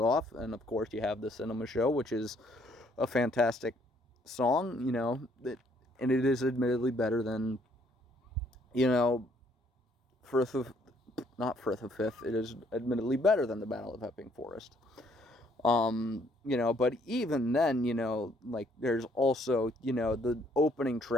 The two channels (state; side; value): normal; both; correlation 0.66